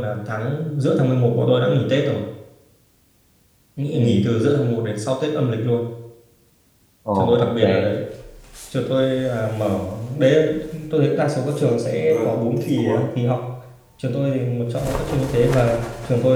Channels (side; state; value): both; identical; correlation 1.00